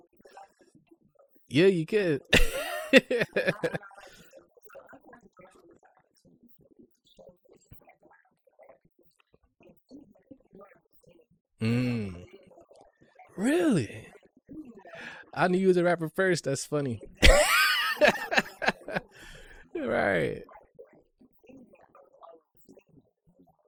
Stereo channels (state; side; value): identical; both; correlation 1.00